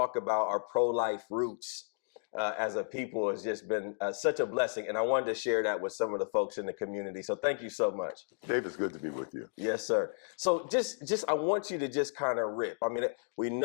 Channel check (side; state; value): right; silent; digital silence